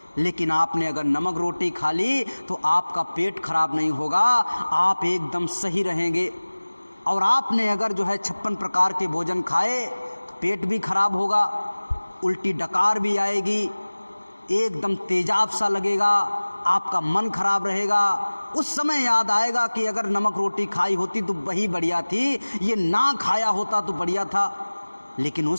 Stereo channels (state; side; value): inverted; both; correlation -1.00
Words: लेकिन आपने अगर नमक रोटी खा ली तो आपका पेट खराब नहीं होगा, आप एकदम सही रहेंगे। और आपने अगर जो है 56 प्रकार के भोजन खाए, पेट भी खराब होगा, उल्टी डकार भी आएगी, एकदम तेजाब सा लगेगा, आपका मन खराब रहेगा। उस समय याद आएगा कि अगर नमक रोटी खाई होती तो वही बढ़िया थी, ये ना खाया होता तो बढ़िया था। लेकिन